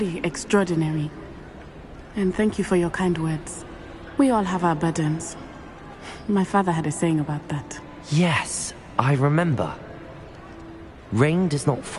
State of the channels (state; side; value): identical; both; correlation 1.00